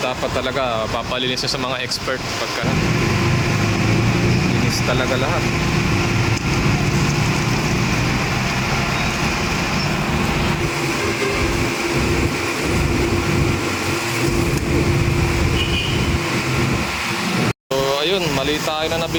talaga papalinis sa mga expert pagka linis talaga lahat. Ayun, mali tayo na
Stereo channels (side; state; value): both; identical; correlation 1.00